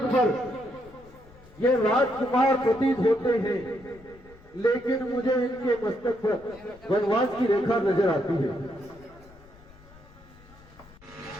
पर ये राजकुमार प्रतीत होते हैं, लेकिन मुझे इनके मस्तक पर वनवास की रेखा नजर आती है।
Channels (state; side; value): noise; left; rumble, 24 dB below the sound